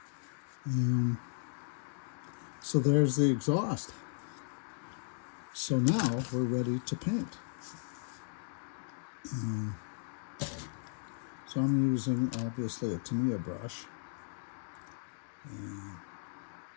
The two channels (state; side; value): silent; right; digital silence